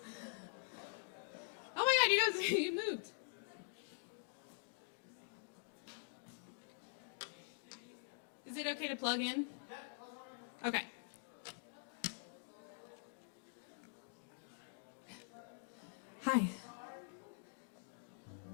Oh my god, you guys, you moved. Is it okay to plug in? Okay. Hi.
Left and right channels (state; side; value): silent; right; digital silence